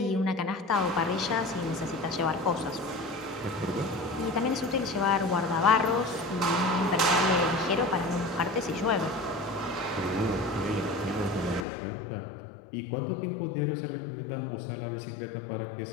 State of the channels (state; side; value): drops out; right; at 11.7 s